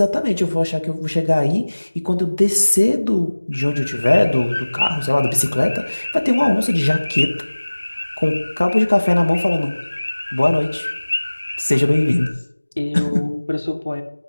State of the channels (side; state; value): both; inverted; correlation -1.00